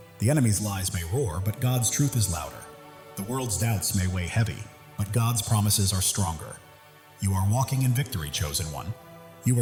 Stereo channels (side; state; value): both; identical; correlation 1.00